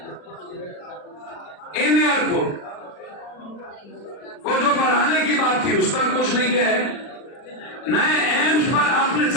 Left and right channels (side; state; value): right; late; 39 ms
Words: इन एयरपोर्ट को जो बढ़ाने की बात थी उस पर कुछ नहीं किया है। नए एम्स पर आपने